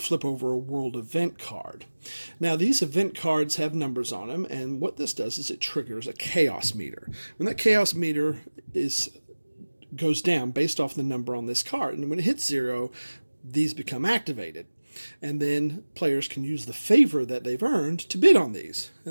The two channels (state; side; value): inverted; both; correlation -1.00